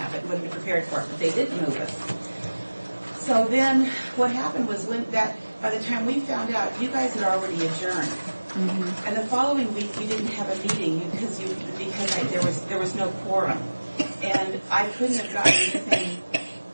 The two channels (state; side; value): inverted; both; correlation -1.00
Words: but wouldn't have prepared for it. But they didn't move us. So then, what happened was by the time we found out, you guys had already adjourned. And the following week, we didn't have a meeting because there was no quorum, and I couldn't have gotten anything